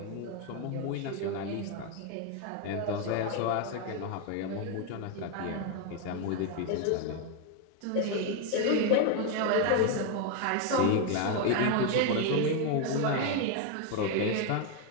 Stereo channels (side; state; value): both; different; correlation 0.01